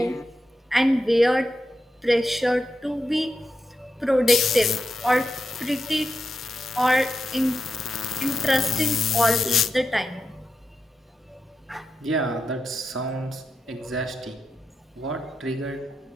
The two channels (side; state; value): both; normal; correlation 0.88